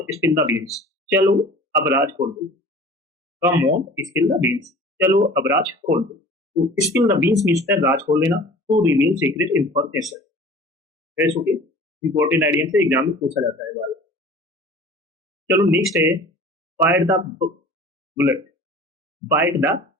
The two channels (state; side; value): normal; both; correlation 0.43